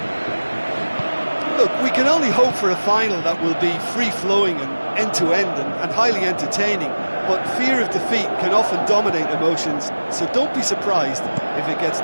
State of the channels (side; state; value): both; inverted; correlation -1.00